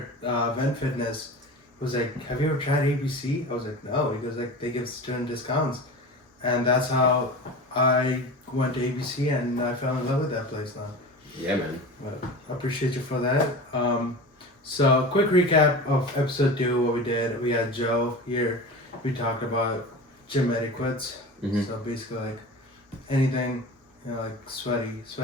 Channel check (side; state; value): both; normal; correlation 0.32